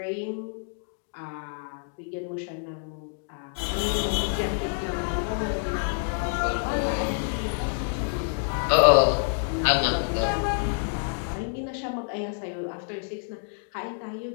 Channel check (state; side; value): silent; right; digital silence